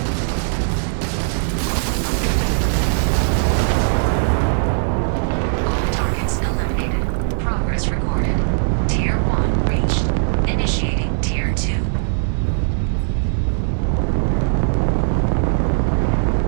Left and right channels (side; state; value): left; silent; digital silence